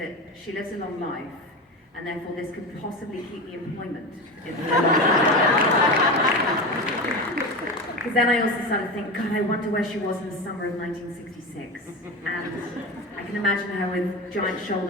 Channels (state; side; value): normal; both; correlation 0.23